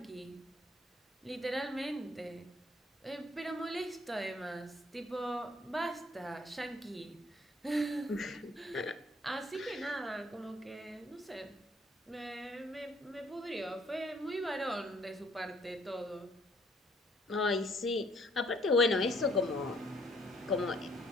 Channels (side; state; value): both; normal; correlation 0.64